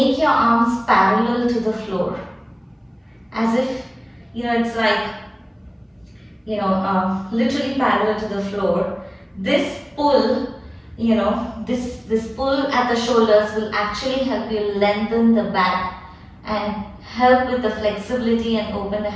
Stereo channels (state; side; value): identical; both; correlation 1.00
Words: your arms parallel to the floor. As if, it's like, literally parallel to the floor. This pull, this pull at the shoulders will actually help you lengthen the back and help with the flexibility and open the